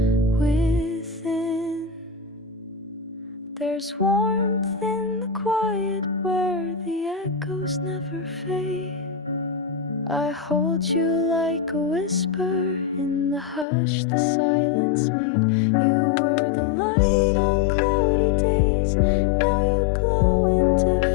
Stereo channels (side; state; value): right; drops out; at 13.7 s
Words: within. There's warmth in the quiet where the echoes never fade. I hold you like a whisper in the hush the silence made. You were the light on cloudy days, now you glow in